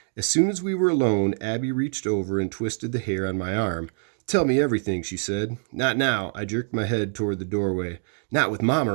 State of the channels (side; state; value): left; silent; digital silence